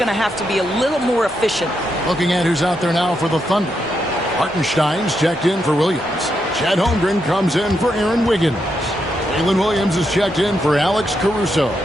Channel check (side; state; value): both; normal; correlation 0.82